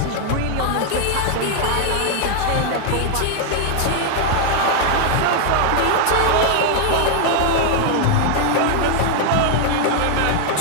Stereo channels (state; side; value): different; both; correlation 0.00